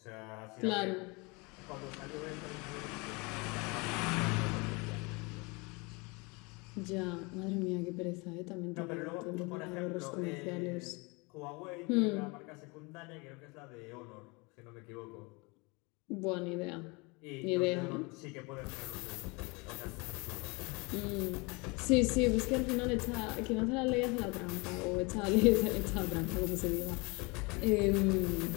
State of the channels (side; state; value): right; quieter; 27.9 dB